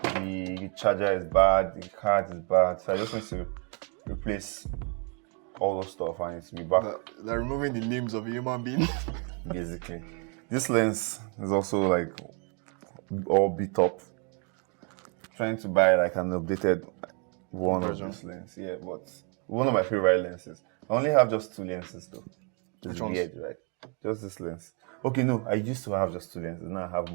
the charger is bad, the card is bad. So I just need to replace all those stuff and it's be back. They're removing the limbs of a human being. Basically. This lens is also like all beat up. Trying to buy like an updated one version of this lens. Yeah, but one of my favorite lenses. I only have just 2 lenses though. It's weird, right? Just this lens. Okay, no, I used to have just 2 lenses. Now I have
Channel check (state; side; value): quieter; left; 36.4 dB